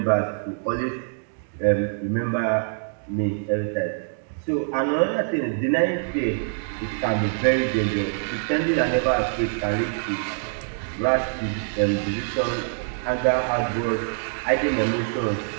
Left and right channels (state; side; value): silent; left; digital silence